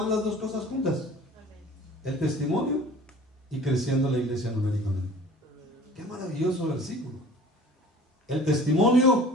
las dos cosas juntas? El testimonio y creciendo la iglesia numéricamente. Qué maravilloso versículo. El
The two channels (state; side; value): normal; both; correlation 0.46